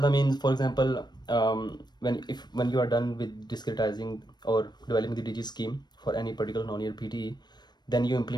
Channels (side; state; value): right; late; 0.21 ms